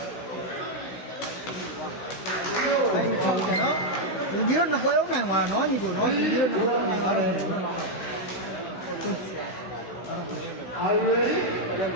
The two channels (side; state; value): right; late; 15 ms